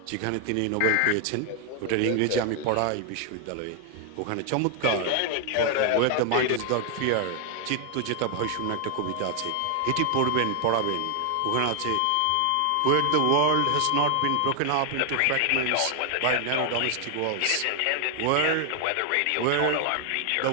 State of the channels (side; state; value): both; different; correlation 0.00